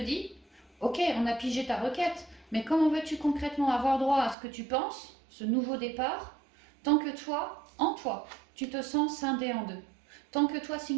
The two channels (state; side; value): drops out; left; at 4.4 s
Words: ok, on a pigé ta requête, mais comment veux-tu concrètement avoir droit à ce que tu penses, ce nouveau départ, tant que toi, en toi, tu te sens scindé en deux. Tant que toi,